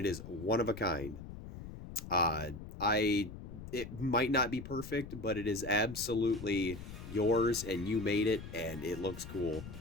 is one of a kind. It might not be perfect, but it is absolutely yours, and you made it, and it looks cool.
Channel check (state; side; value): noise; left; rumble, 11 dB below the sound